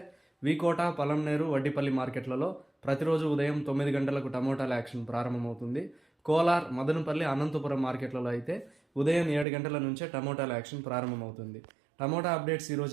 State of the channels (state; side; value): drops out; left; at 9.5 s